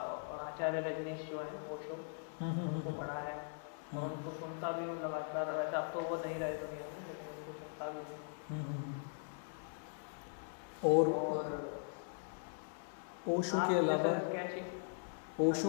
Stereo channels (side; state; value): right; silent; digital silence